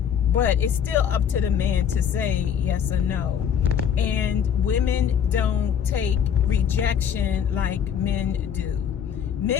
but it's still up to the man to say yes or no. And women don't take rejection like men do.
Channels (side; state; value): right; quieter; 8.3 dB